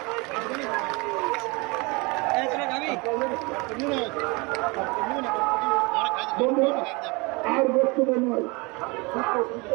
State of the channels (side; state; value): left; quieter; 27.2 dB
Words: আর বক্তব্য নয়,